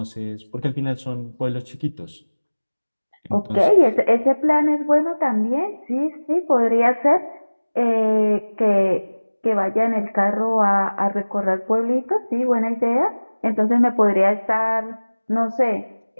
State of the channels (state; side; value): inverted; both; correlation -1.00